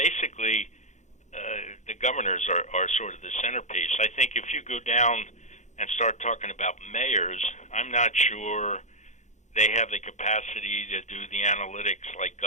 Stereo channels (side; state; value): right; late; 0.34 ms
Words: the governors are sort of the centerpiece. I think if you go down and start talking about mayors, I'm not sure they have the capacity to do the analytics like